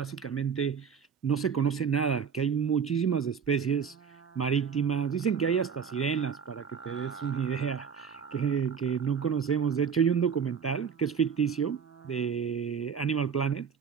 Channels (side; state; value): left; quieter; 6.8 dB